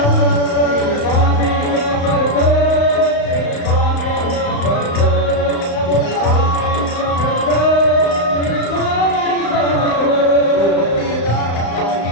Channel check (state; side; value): late; right; 35 ms